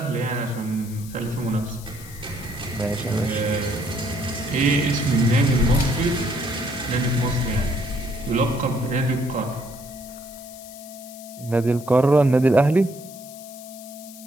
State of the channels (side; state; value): left; noise; hiss, 17 dB below the sound